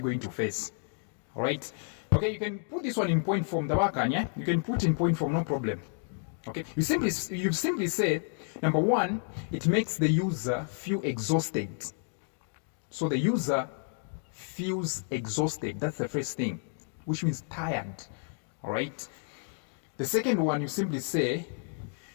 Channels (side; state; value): right; silent; 56 dB below the other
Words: face? All right. Okay, you can put this one in point form, yeah? You can put in point form, no problem. Okay, you simply say, number one, it makes the user feel exhausted. So the user feels exhausted. That's the first thing, which means tired. All right. The second one, you simply say,